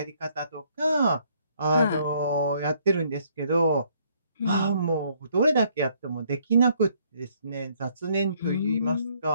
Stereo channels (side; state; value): both; inverted; correlation -0.66